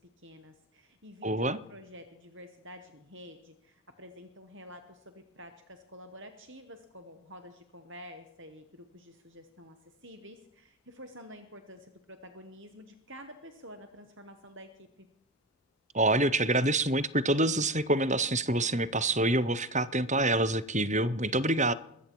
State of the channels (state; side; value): normal; both; correlation 0.25